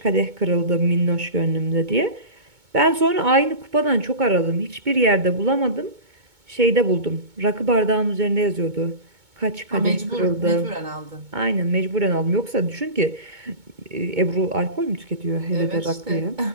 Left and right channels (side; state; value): left; late; 2.2 ms